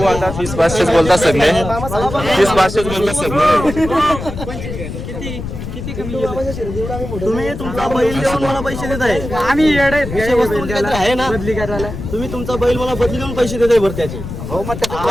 आता 30,500 बोलतात सगळे, 30,500 बोलतात सगळे. तुम्ही तुमचा बैल देऊन मला पैसे देत आहे. आहे ना बदली करायला. तुम्ही तुमचा बैल मला बदली देऊन पैसे देत आहे बरं त्याचे.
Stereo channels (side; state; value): left; noise; rumble, 8 dB below the sound